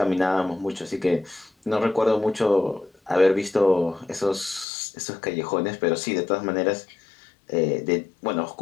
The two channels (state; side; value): drops out; right; at 4.7 s